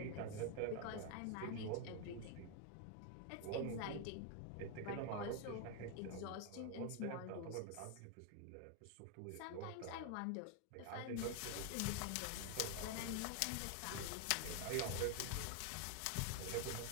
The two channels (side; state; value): both; different; correlation 0.00